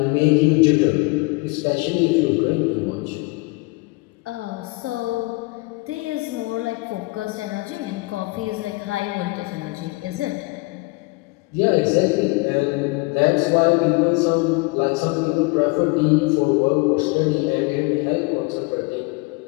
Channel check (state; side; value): quieter; right; 25.6 dB